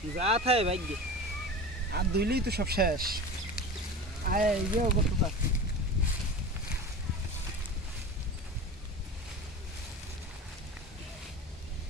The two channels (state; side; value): normal; both; correlation 0.32